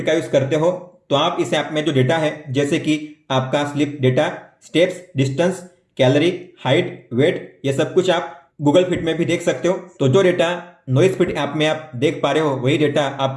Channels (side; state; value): both; identical; correlation 1.00